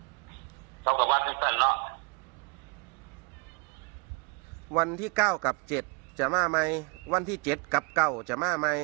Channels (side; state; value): left; quieter; 33.1 dB